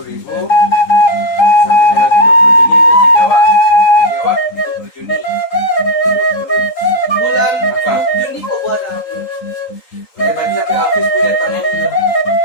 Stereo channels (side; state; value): right; late; 3.8 ms